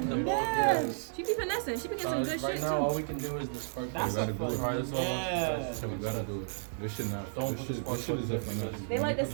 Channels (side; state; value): left; silent; digital silence